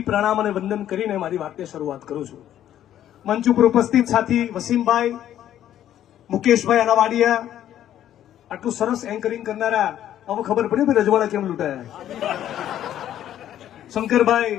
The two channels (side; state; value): right; quieter; 11.4 dB